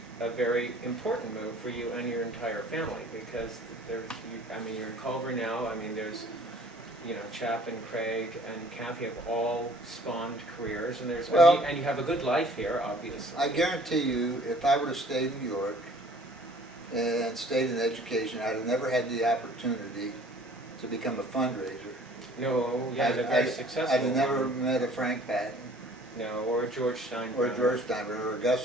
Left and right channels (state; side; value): normal; both; correlation 0.53